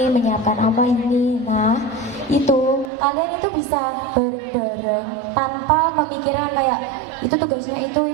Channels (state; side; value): drops out; left; at 2.9 s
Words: menyiapkan apa ini. Nah, itu kalian itu bisa bareng-bareng tanpa memikirkan kayak itu tugasnya